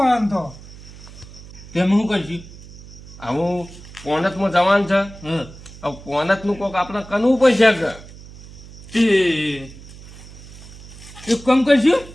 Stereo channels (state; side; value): noise; right; hum, 17 dB below the sound